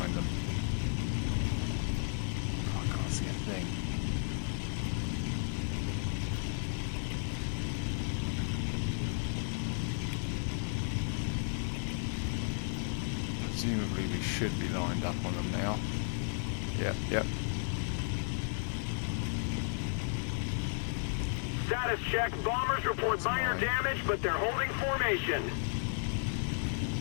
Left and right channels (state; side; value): silent; right; digital silence